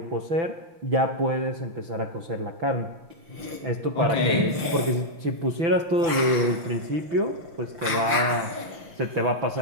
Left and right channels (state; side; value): late; left; 5.8 ms